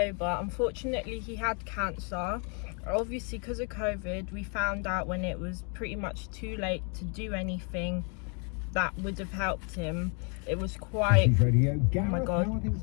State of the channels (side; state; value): right; quieter; 38.1 dB